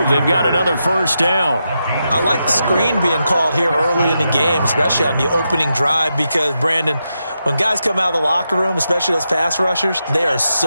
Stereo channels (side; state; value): both; inverted; correlation -0.86